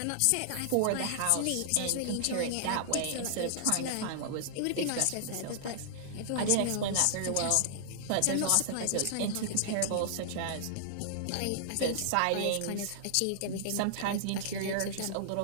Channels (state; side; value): different; both; correlation -0.01